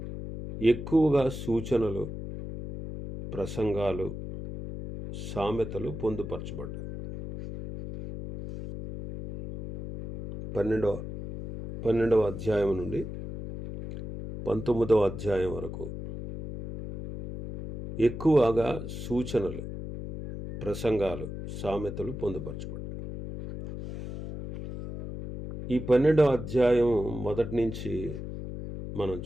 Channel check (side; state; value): left; noise; hum, 8 dB below the sound